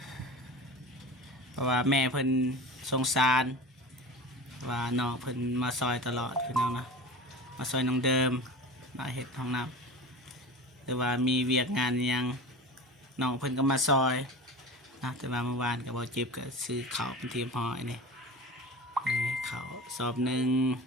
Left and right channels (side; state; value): both; normal; correlation 0.33